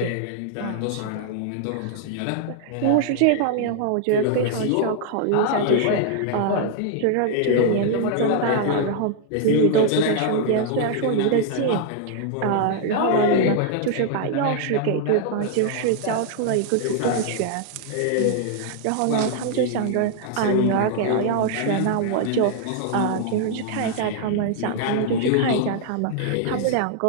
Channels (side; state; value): both; different; correlation -0.01